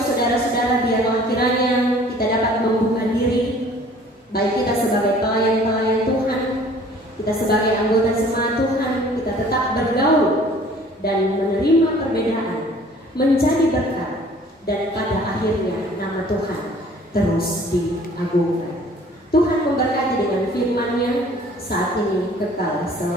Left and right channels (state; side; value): normal; both; correlation 0.52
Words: biarlah kiranya kita dapat membuka diri, baik kita sebagai pelayan-pelayan Tuhan, kita sebagai anggota jemaat Tuhan, kita tetap bergaul dan menerima perbedaan menjadi berkat, dan pada akhirnya nama Tuhan terus diagungkan. Tuhan memberkati dengan firman-Nya saat ini kekal